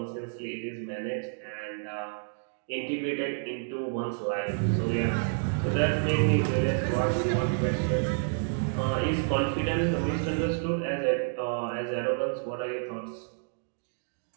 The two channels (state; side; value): silent; left; digital silence